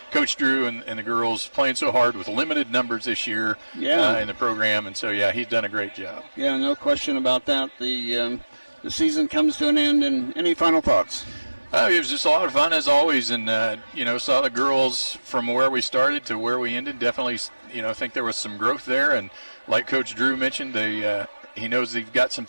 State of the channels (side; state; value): both; inverted; correlation -1.00